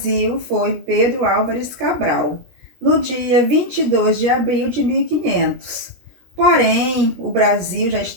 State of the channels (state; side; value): late; left; 17 ms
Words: foi Pedro Álvares Cabral, no dia 22 de abril de 1500. Porém, o Brasil já